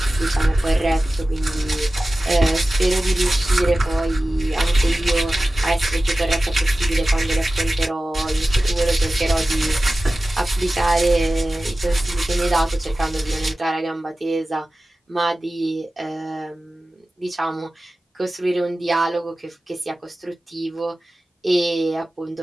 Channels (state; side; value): normal; both; correlation 0.95